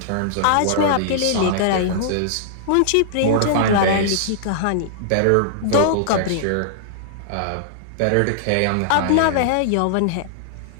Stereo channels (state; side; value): different; both; correlation -0.01